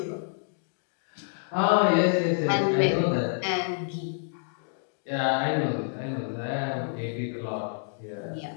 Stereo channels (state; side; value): silent; right; digital silence